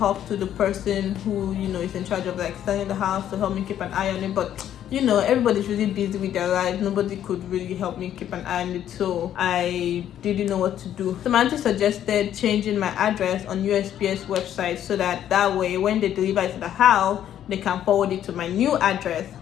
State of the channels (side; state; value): right; quieter; 10.8 dB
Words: to the person who is in charge of selling the house to help me keep an eye on it, but everybody's really busy with their lives. Nobody could really help me keep an eye on it, so I didn't know what to do. So my auntie suggested changing my address on USPS website so that way when they deliver it to the house, they can forward it to my new address.